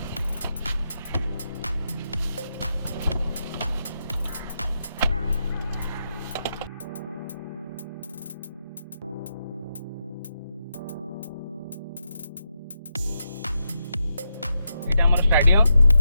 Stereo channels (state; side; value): inverted; both; correlation -0.84